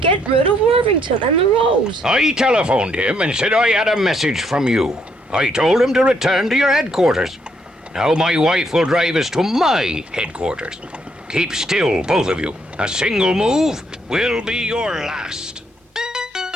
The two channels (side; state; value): both; normal; correlation 0.71